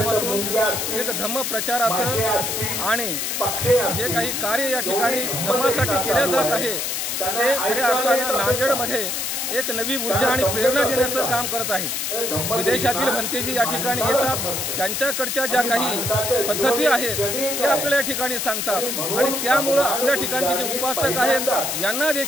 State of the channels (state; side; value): noise; left; hiss, 1 dB below the sound